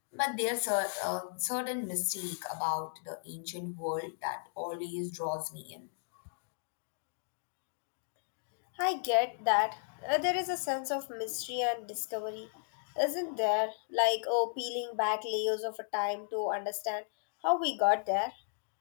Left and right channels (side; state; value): right; silent; digital silence